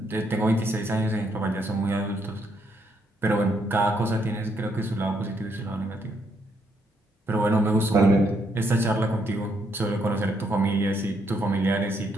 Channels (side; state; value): both; normal; correlation 0.74